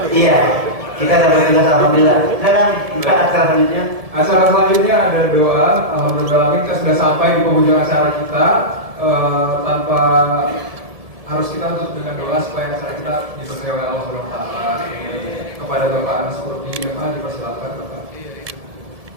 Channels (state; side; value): late; left; 1.7 ms